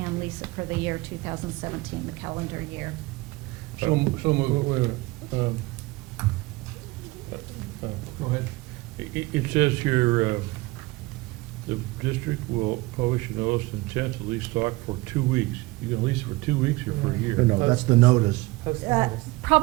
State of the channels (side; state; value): left; quieter; 21.7 dB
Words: lease it for the year 2017, the calendar year. So moved. Go ahead. It says here, the district will publish a notice of intent to lease stock for 2 weeks. You gonna lease it for 2 weeks or for a year? No, that's the notice. Post notice.